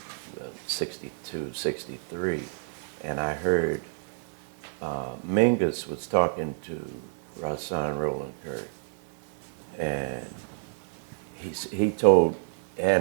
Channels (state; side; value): silent; left; 56 dB below the other